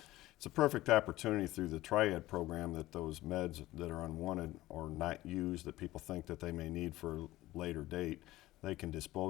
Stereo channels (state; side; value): quieter; right; 16.9 dB